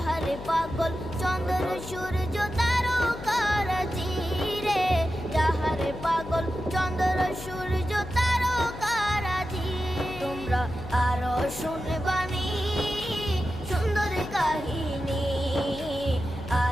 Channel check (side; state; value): left; noise; hum, 12 dB below the sound